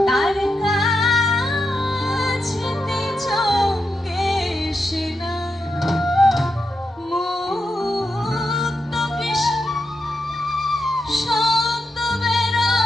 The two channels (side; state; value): both; normal; correlation 0.86